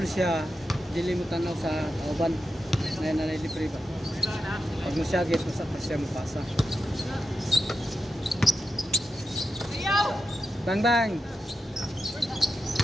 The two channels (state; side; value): normal; both; correlation 0.90